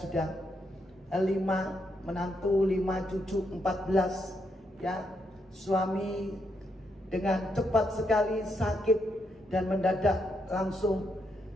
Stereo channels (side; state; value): both; normal; correlation 0.79